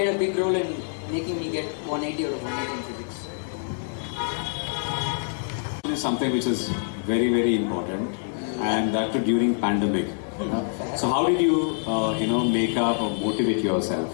a big role in making me get 180 out of 180 in physics. This is something which is very, very important, and that too during pandemic. So how did you, make up or motivate yourself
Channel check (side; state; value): right; silent; digital silence